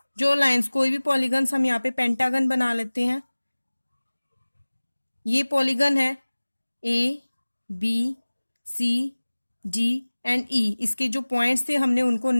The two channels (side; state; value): both; inverted; correlation -1.00